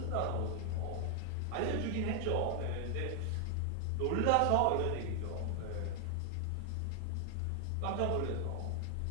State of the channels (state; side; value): different; both; correlation 0.00